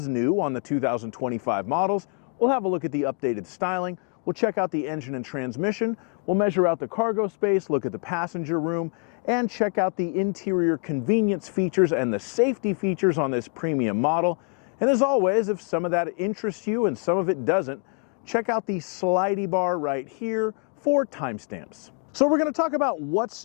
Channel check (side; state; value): right; quieter; 39.1 dB